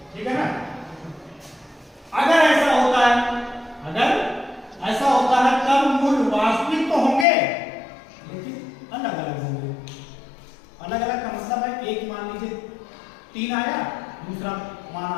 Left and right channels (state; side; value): drops out; right; at 7.2 s